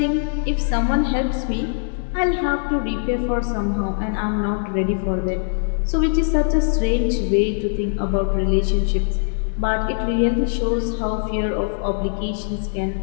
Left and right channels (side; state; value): right; silent; 61 dB below the other